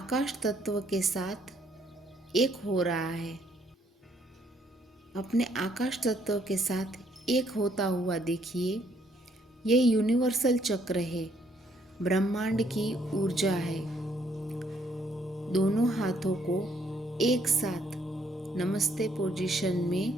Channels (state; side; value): normal; both; correlation 0.68